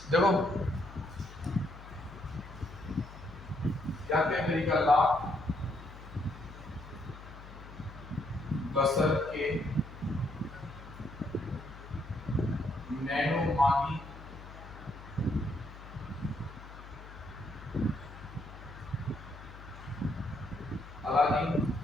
देखो, क्या क्या तरीका ला बसर के नैनो मागी अलादीन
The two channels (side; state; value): left; noise; hum, 15 dB below the sound